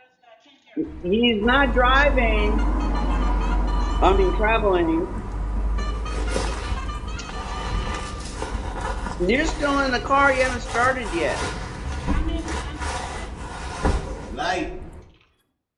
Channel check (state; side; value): identical; both; correlation 1.00